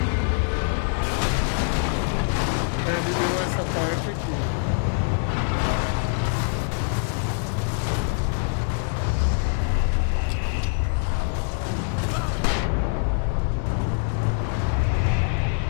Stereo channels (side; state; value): right; silent; 62 dB below the other